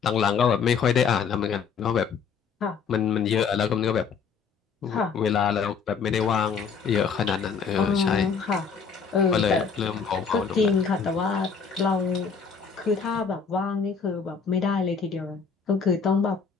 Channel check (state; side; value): quieter; right; 5.9 dB